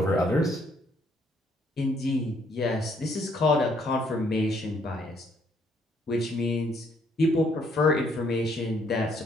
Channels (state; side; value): normal; both; correlation 0.68